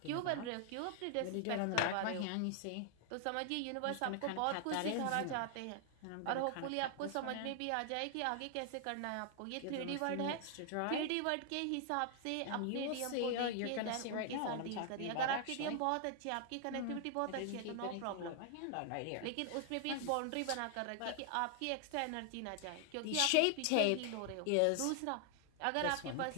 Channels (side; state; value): both; different; correlation 0.00